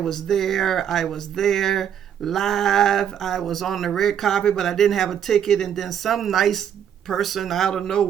there live. I was on the red carpet, but I didn't have a ticket. And then some nice person out of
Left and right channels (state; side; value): quieter; left; 9.0 dB